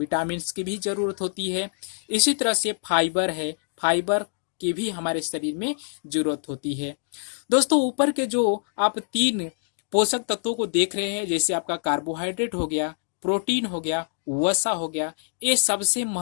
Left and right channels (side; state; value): right; silent; digital silence